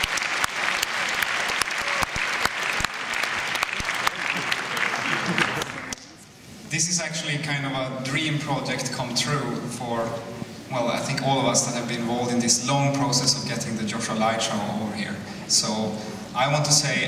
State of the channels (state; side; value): identical; both; correlation 1.00